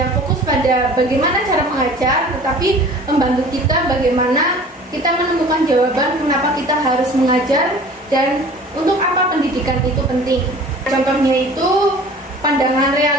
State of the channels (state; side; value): normal; both; correlation 0.45